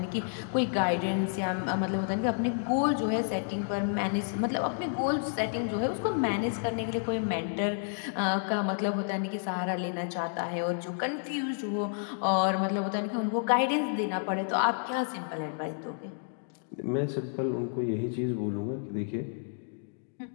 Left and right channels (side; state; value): right; silent; digital silence